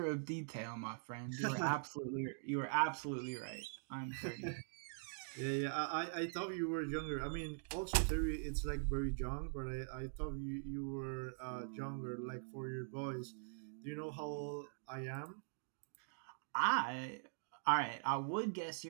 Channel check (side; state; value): left; silent; digital silence